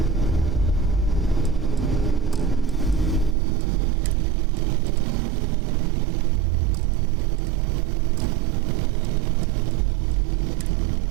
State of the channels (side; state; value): left; drops out; at 3.4 s